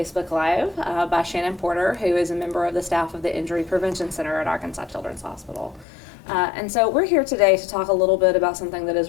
Live by Shannon Porter, who is a member of the staff of the Injury Prevention Center at Arkansas Children's Hospital. And so we're here today to talk a little bit about something that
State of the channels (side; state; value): right; drops out; at 5.9 s